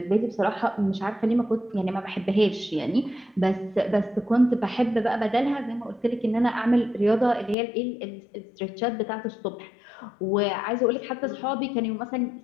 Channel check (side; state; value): right; drops out; at 7.6 s